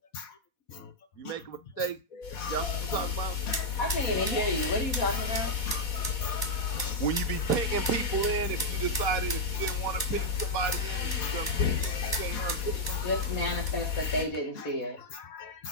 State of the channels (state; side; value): late; right; 4.1 ms